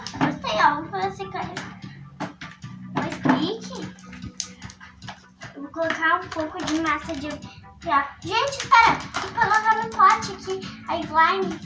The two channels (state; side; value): identical; both; correlation 1.00